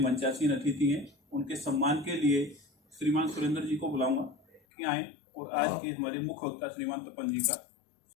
अतिथि हैं उनके सम्मान के लिए श्रीमान सुरेंद्र जी को बुलाऊंगा कि आए और आज के हमारे मुख्य वक्ता श्रीमान तपन जी का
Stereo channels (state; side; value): drops out; right; at 4.6 s